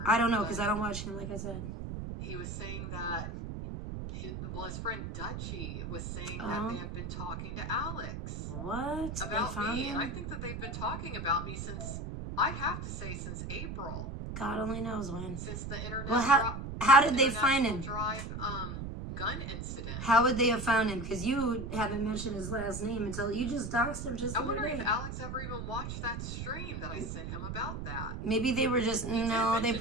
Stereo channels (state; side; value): noise; right; rumble, 6 dB below the sound